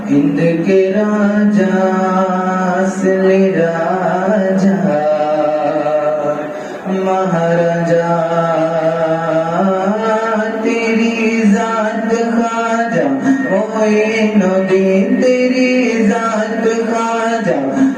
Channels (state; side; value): identical; both; correlation 1.00